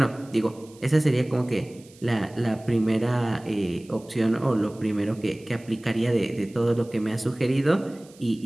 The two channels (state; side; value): noise; right; hiss, 26 dB below the sound